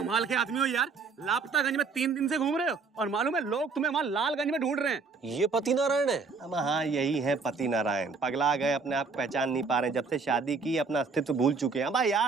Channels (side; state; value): left; quieter; 4.6 dB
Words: के आदमी हो यार, लापतागंज में 3 दिन से घूम रहे हो और मालूम है लोग तुम्हें वहाँ लालगंज में ढूंढ रहे हैं। ये पति नारायण है? अब हाँ, यही है पति नारायण। पगला गए, अपने आप पहचान नहीं पा रहे, जब से शादी की अपना अस्तित्व भूल चुके हैं। अब